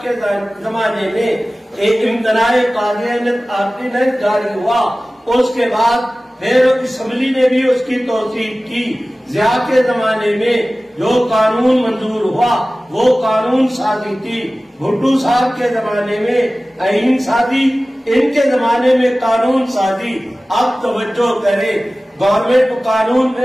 کے زمانے میں ایک امتناع قاضیانت آرڈیننس جاری ہوا، اس کے بعد پھر اسمبلی نے بھی اس کی توثیق کی۔ ضیاء کے زمانے میں جو قانون منظور ہوا وہ قانون سازی تھی، بھٹو صاحب کے زمانے میں آئین سازی، ان کے زمانے میں قانون سازی۔ اب توجہ کرے، گورنمنٹ قانون میں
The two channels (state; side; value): normal; both; correlation 0.97